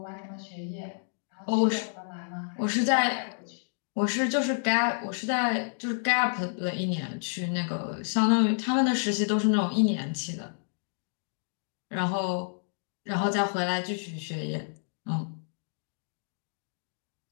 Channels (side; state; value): right; silent; digital silence